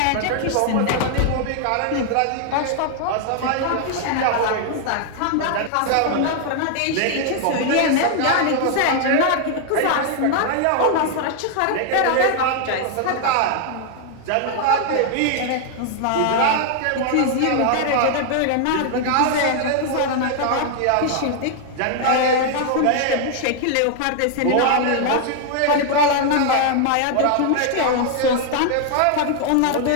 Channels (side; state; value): both; different; correlation 0.00